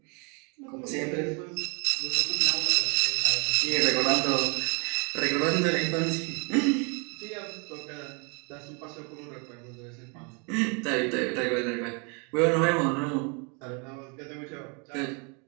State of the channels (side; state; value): left; quieter; 34.4 dB